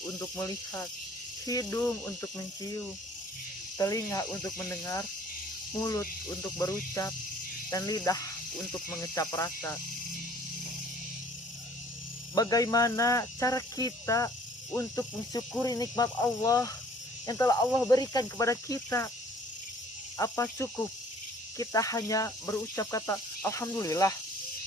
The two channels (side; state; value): both; normal; correlation 0.55